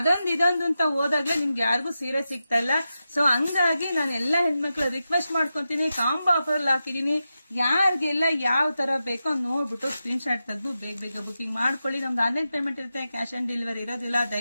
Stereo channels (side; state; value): both; inverted; correlation -0.90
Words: ಇದೊಂದು ಅಂತ ಹೋದಾಗ್ಲೇ ನಿಮ್ಗೆ ಯಾರಿಗೂ ಸೀರೆ ಸಿಗ್ತಾ ಇಲ್ಲ. ಸೊ ಹಂಗಾಗಿ ನಾನು ಎಲ್ಲಾ ಹೆಣ್ಮಕ್ಳು ರಿಕ್ವೆಸ್ಟ್ ಮಾಡ್ಕೊಂತೀನಿ, ಕಾಂಬೋ ಆಫರ್ ಅಲ್ಲಿ ಹಾಕಿದೀನಿ. ಯಾರಿಗೆಲ್ಲ ಯಾವ ತರ ಬೇಕೋ ನೋಡ್ಬಿಟ್ಟು ಸ್ಕ್ರೀನ್ ಶಾಟ್ ತೆಗೆದು ಬೇಗ ಬುಕಿಂಗ್ ಮಾಡ್ಕೊಳ್ಳಿ. ನಮ್ದು ಆನ್ಲೈನ್ ಪೇಮೆಂಟ್ ಇರುತ್ತೆ, ಕ್ಯಾಶ್ ಆನ್ ಡೆಲಿವರಿ ಇರೋದಿಲ್ಲ.